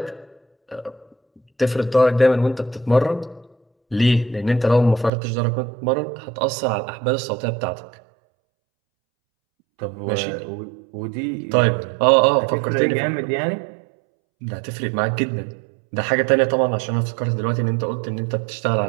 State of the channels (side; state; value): left; drops out; at 5.1 s